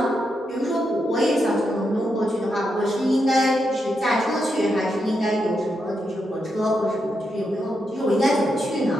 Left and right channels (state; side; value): normal; both; correlation 0.83